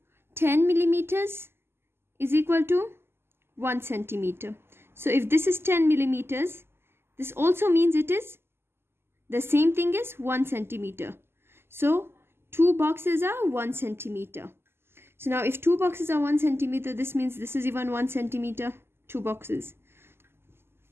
10 millimeters is equal to 1 centimeter. So if this is 10 millimeters, this also means it is the same thing as 1 centimeter. So 2 boxes are 1 centimeter. So now if 2 boxes are 1 centimeter, this means this is even 1 centimeter, 2 boxes.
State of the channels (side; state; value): left; late; 0.12 ms